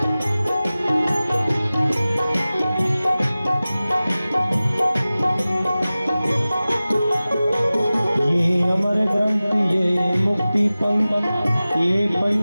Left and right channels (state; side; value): inverted; both; correlation -0.97